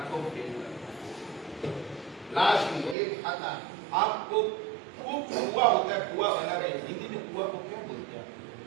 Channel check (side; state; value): left; drops out; at 3.0 s